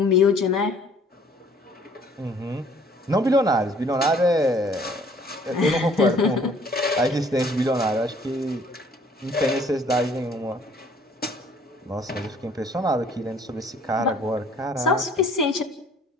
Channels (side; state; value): both; normal; correlation 0.57